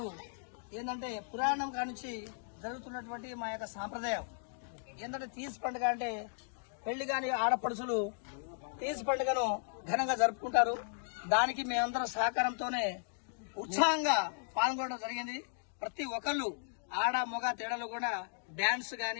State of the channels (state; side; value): silent; right; digital silence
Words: ఏంటంటే పురాణం కానుంచి జరుగుతున్నటువంటి మా యొక్క సాంప్రదాయం ఏంటంటే తీజ్ పండుగ అంటే పెళ్లి కాని ఆడపడుచులు తీజ్ పండుగను ఘనంగా జరుపుకుంటారు. దానికి మేమందరం సహకారంతోనే ఉత్సాహంగా పాల్గొనడం జరిగింది. ప్రతి ఒక్కళ్ళు ఆడ మొగ తేడాలు కూడా డాన్స్